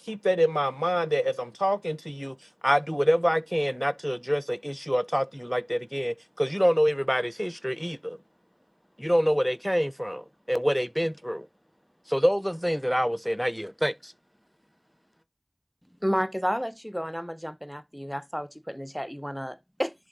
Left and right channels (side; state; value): both; identical; correlation 1.00